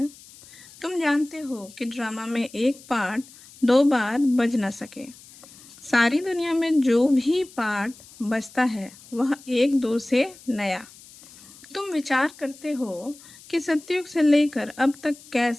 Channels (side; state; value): left; noise; hiss, 22 dB below the sound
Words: तुम जानते हो कि ड्रामा में एक पार्ट 2 बार बज ना सके। सारी दुनिया में जो भी पार्ट बजता है वह 1-2 से नया। तुम विचार करते हो कि सतयुग से लेकर अब तक